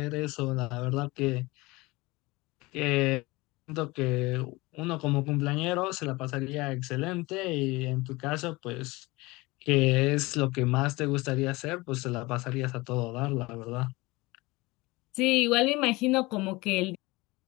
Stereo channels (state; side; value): quieter; right; 22.3 dB